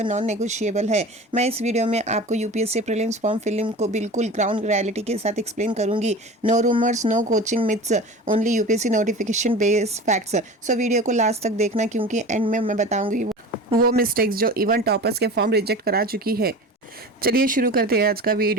नॉन नेगोशिएबल है। मैं इस वीडियो में आपको यूपीएससी प्रीलिम्स फॉर्म फिलिंग को बिल्कुल ग्राउंड रियलिटी के साथ एक्सप्लेन करूंगी। No rumours, no coaching myths, only UPSC notification based facts. So video को लास्ट तक देखना, क्योंकि एंड में मैं बताऊंगी वो मिस्टेक्स जो इवन टॉपर्स के फॉर्म रिजेक्ट करा चुकी है। चलिए शुरू करते हैं आज का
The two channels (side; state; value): both; normal; correlation 0.34